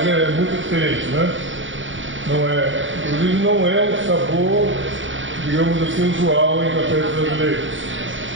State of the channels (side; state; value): left; late; 0.56 ms